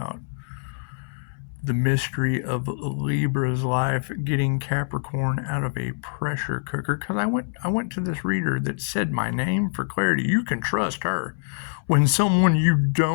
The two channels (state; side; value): silent; right; 62 dB below the other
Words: the mystery of Libra's life, getting Capricorn out of a pressure cooker. Because I went to this reader that said my name for clarity. You can trust her. When someone you